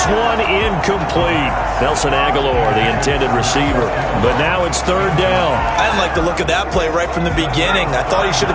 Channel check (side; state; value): both; identical; correlation 1.00